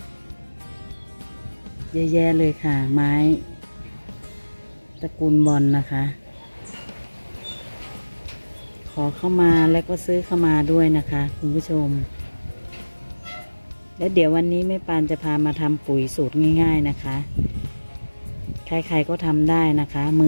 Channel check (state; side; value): inverted; both; correlation -1.00